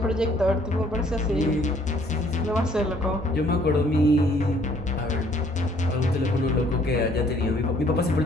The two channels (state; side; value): normal; both; correlation 0.62